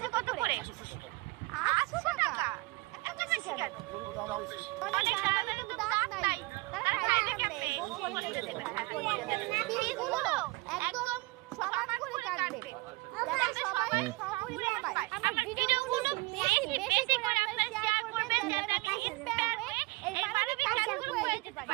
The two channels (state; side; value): quieter; left; 22.6 dB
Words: কত করে? 800 টাকা। এত বেশি কেন? অনেক দামের তো দাম নাই। তারা খাইবে কেমনে? বলে দেবে। পিসগুলো একদম সমান করে কাটবে। যাতে সবাই সমান পায়। আমার ভিডিওগুলো বেশি করে আপনারা শেয়ার করবেন যাতে আমি ইন্সপায়ার হয়ে এই মানবিক কাজগুলো করে দিতে